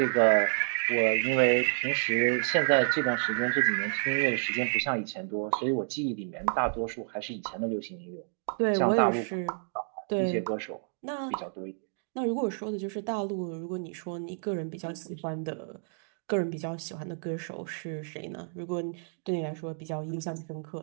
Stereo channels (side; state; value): left; silent; digital silence